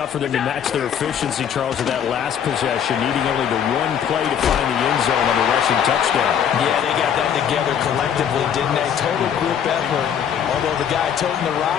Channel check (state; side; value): quieter; right; 8.6 dB